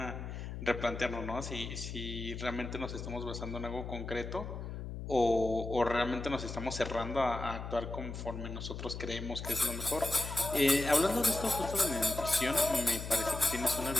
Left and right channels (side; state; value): left; noise; hum, 7 dB below the sound